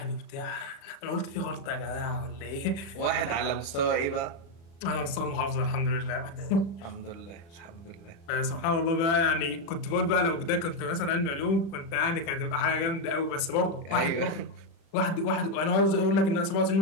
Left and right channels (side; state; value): right; late; 36 ms